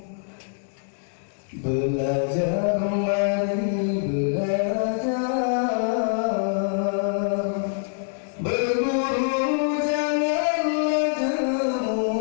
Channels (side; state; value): right; silent; digital silence